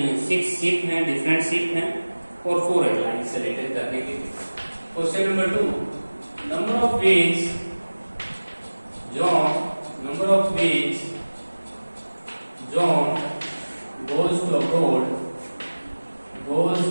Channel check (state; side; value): inverted; both; correlation -1.00